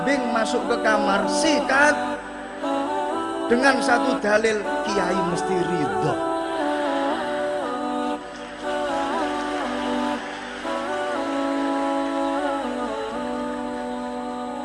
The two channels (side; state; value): both; identical; correlation 1.00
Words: masuk ke kamar, sikat dengan satu dalil, kiai mesti ridho.